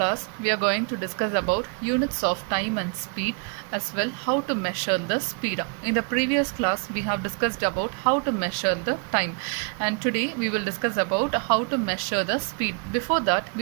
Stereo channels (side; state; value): left; quieter; 39.0 dB